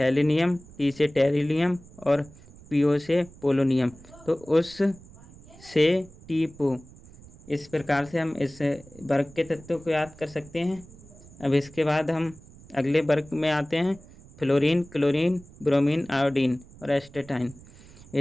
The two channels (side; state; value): right; noise; rumble, 21 dB below the sound